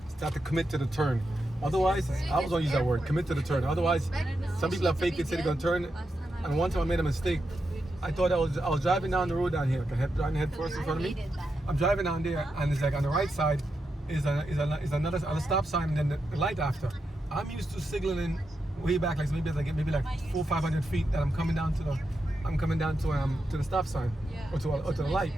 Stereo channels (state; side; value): normal; both; correlation 0.86